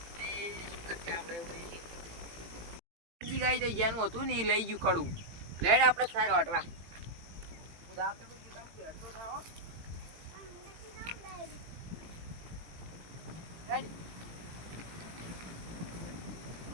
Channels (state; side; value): late; left; 17 ms